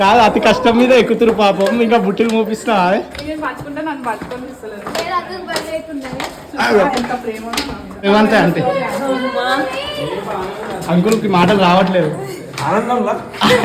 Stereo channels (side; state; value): both; identical; correlation 1.00